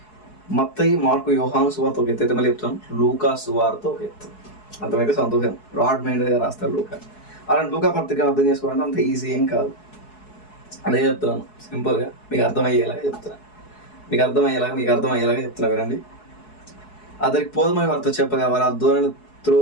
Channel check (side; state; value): right; late; 4.7 ms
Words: మత్తయి, మార్కు, యోహాను సువార్త ఒక ఎత్తు అయితే మళ్ళీ చెప్తాను, లూకా సువార్త ఒక ఎత్తు. అర్థమైతే సంతోషం. బ్రాడ్ మైండ్గా రాస్తాడు లూకా. అలాంటి లూకా పత్రికను అర్థం చేసుకోవాలంటే అంత ఈజీ ఏం కాదు. అదే చెప్తున్నాను, సింపుల్గా మీకు అర్థమయ్యేలాగా చెప్తున్నా వినండి. అతనికి పోదమని వారితో చెప్పగా వారు ఆ దోణిని